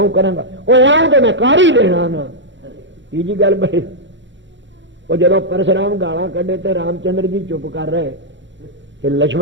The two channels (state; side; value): late; left; 0.54 ms